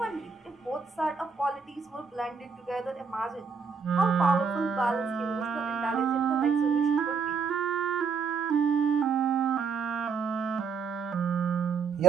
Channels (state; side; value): quieter; left; 5.4 dB